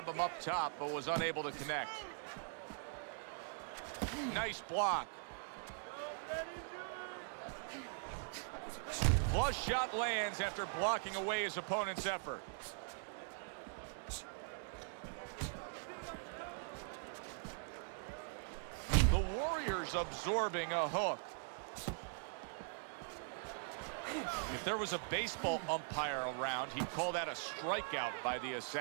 him up top, but was unable to connect. Nice block. Flush shot lands after blocking away his opponent's effort. The Warriors absorbing a hook. If there was a baseball umpire around, he'd call that a strikeout by the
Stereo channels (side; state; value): left; silent; digital silence